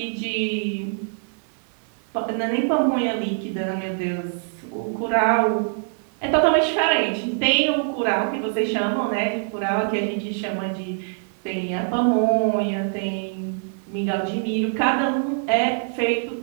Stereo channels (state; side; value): silent; left; digital silence